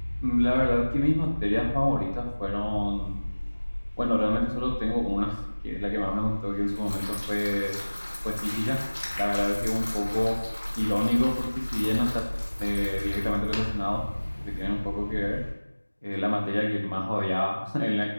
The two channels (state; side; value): inverted; both; correlation -1.00